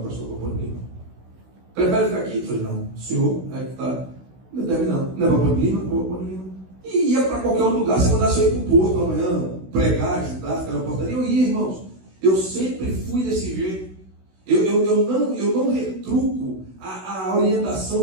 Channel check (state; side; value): late; left; 16 ms